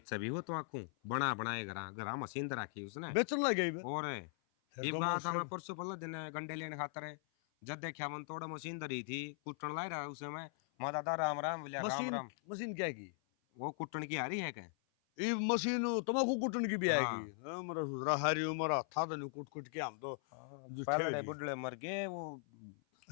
भी हो तो आखू बना बनाए घरा घरा मशीन तो रखी उसने बेचन लग गई और ये बात हमें परसों पहले दिन गंडे लेने खातर है जब देखा मन थोड़ा मशीन धरी थी कुटन ला रहा उसे में माँ दादा राम राम बोलिया राम राम। मशीन क्या की वो कुटन की आ रही है क्या? ये मशीन तमाकू कुटन की भी हाँ। आएगी मेरा सुधरा हरी उम्र था तो नहीं कुट कुट के हम तो पहले बुढ़े मर गए वो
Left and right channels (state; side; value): silent; right; 51 dB below the other